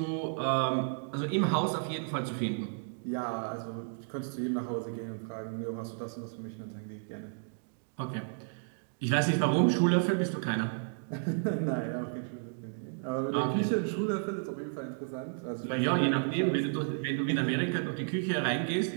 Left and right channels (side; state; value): left; silent; digital silence